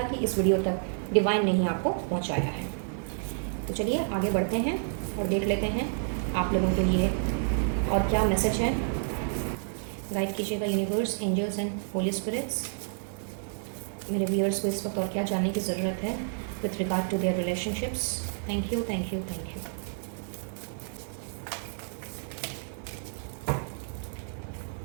कि इस वीडियो तक डिवाइन ने ही आपको पहुँचाया है। तो चलिए आगे बढ़ते हैं और देख लेते हैं आप लोगों के लिए और क्या मैसेज है। गाइड कीजिएगा universe, angels and holy spirits. मेरे व्यूअर्स को इस वक्त और क्या जानने की ज़रूरत है with regard to their relationships. Thank you, thank you, thank you.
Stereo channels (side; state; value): left; silent; digital silence